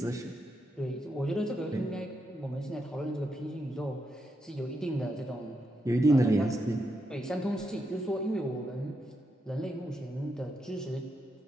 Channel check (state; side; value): normal; both; correlation 0.83